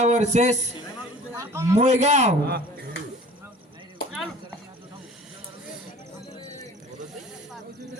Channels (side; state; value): both; normal; correlation 0.46